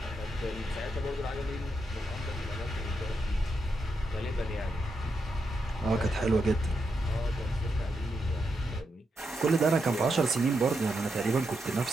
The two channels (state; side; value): normal; both; correlation 0.84